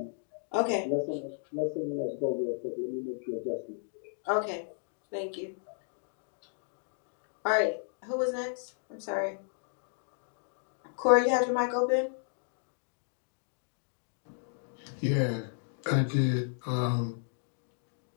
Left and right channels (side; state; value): right; silent; digital silence